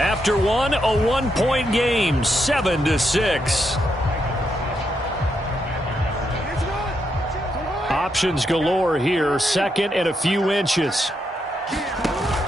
one, a 1-point game, 7-6. Options galore here. Second and a few inches.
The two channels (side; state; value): both; normal; correlation 0.81